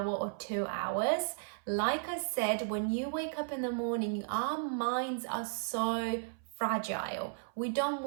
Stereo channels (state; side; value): silent; left; 55 dB below the other